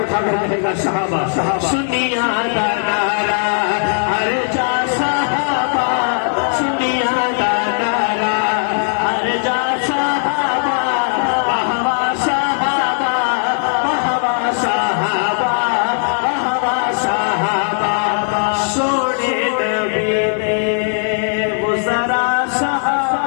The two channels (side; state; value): right; silent; digital silence